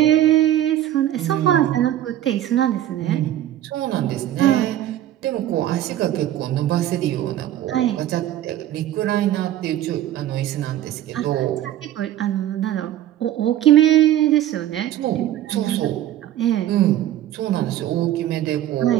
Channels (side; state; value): left; quieter; 12.5 dB